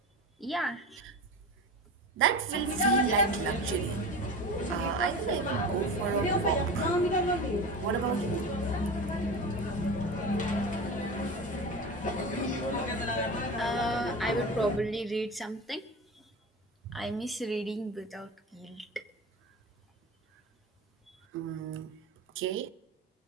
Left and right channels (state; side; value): normal; both; correlation 0.29